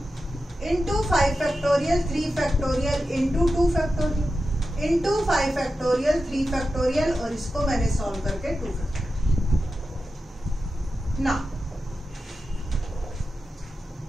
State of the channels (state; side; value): normal; both; correlation 0.91